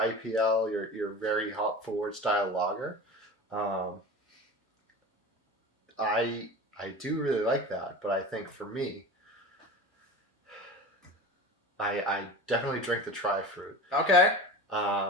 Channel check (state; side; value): normal; both; correlation 0.33